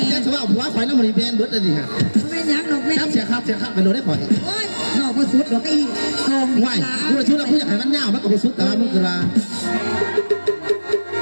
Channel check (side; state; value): both; inverted; correlation -1.00